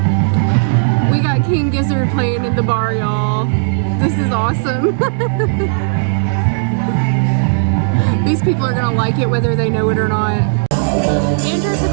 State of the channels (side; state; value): left; silent; digital silence